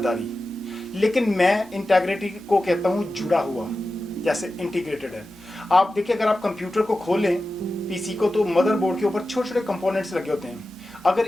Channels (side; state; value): both; normal; correlation 0.93